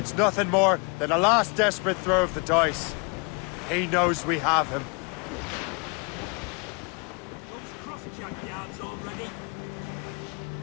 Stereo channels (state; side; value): quieter; right; 33.2 dB